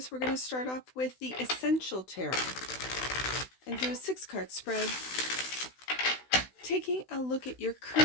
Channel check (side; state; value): right; late; 16 ms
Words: We're going to start off with the Essential Tarot and do a 6-card spread, taking a look at your